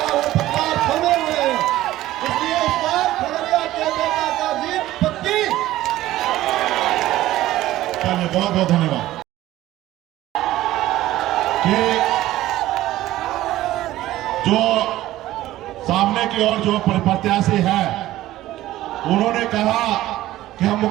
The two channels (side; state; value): left; quieter; 15.2 dB